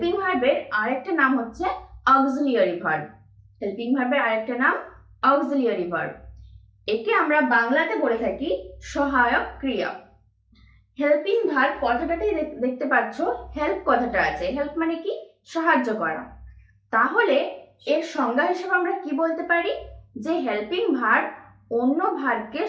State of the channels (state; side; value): identical; both; correlation 1.00